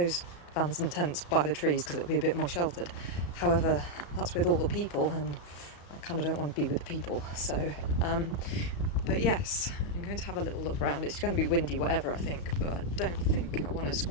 vans and tents by the trees because it'll be a bit more sheltered. However, that's with all the people, and I kind of don't want to be with the people, so but yes, I'm going to have a little look around. It's going to be windy, whatever, I think, but I don't think I want to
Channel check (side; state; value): right; late; 35 ms